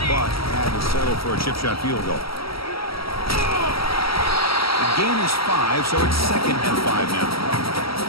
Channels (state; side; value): late; right; 0.75 ms